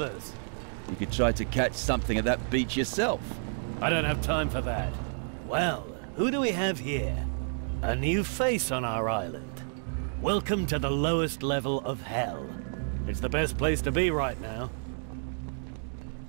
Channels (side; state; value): left; silent; 58 dB below the other